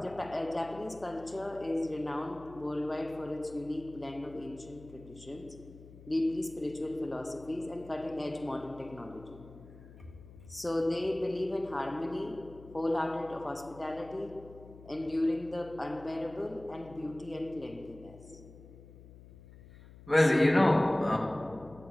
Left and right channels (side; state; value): left; noise; hum, 19 dB below the sound